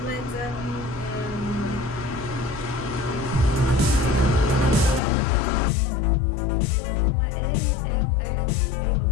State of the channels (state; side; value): drops out; right; at 5.0 s